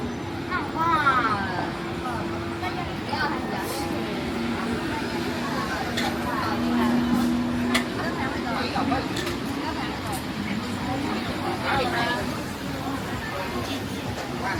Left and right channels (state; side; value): identical; both; correlation 1.00